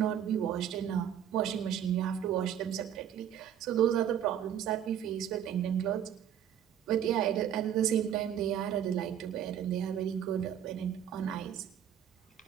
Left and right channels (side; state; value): left; quieter; 9.8 dB